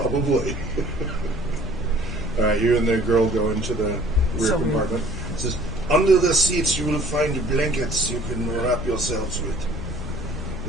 All right, you and the girl go into the rear So compartment. It says, under the seats you will find blankets you can wrap yourselves with.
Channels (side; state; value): both; normal; correlation 0.53